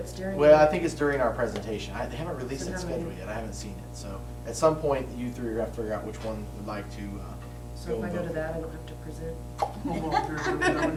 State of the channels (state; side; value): identical; both; correlation 1.00